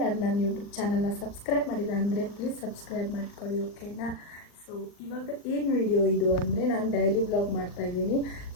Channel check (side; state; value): right; late; 39 ms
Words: ನನ್ನ ಯೂಟ್ಯೂಬ್ ಚಾನಲ್ನ ಸಬ್ಸ್ಕ್ರೈಬ್ ಮಾಡಿಲ್ಲ ಅಂದರೆ ಪ್ಲೀಸ್ ಸಬ್ಸ್ಕ್ರೈಬ್ ಮಾಡ್ಕೊಳ್ಳಿ, ಓಕೆನಾ? ಸೊ ಇವಾಗ ಏನು ವಿಡಿಯೋ ಇದು ಅಂದರೆ, ನಾನು ಡೈಲಿ ವ್ಲಾಗ್ ಮಾಡ್ತಾಯಿದ್ದೀನಿ.